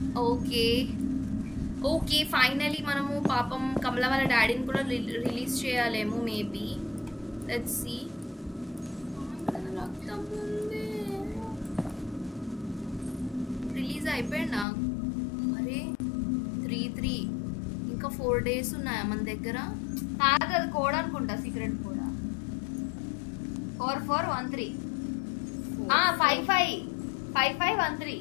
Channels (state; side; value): drops out; right; at 14.7 s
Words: Okay finally మనము పాపం కమల వాళ్ళ డాడీని కూడా రిలీజ్ చేయాలేమో మేబీ. Let's see. రక్తం ఉంది, రిలీజ్ అయిపోయిందా? అరే 3 ఇంకా 4 days ఉన్నాయా మన దగ్గర? కాదు, అది కోడ్ అనుకుంటా, సీక్రెట్ కోడ్. 4413 5513